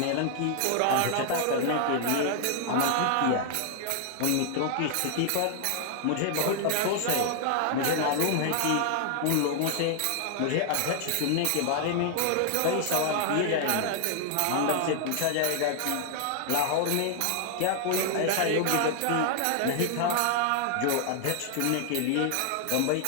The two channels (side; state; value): both; different; correlation 0.00